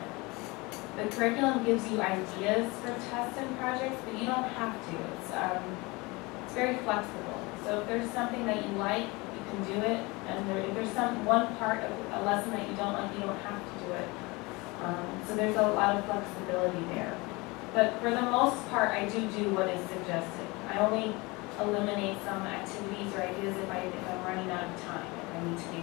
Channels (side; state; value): right; quieter; 24.6 dB